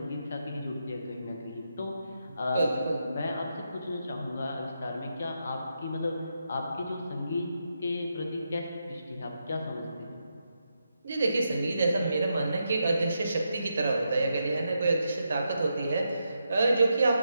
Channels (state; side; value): inverted; both; correlation -0.84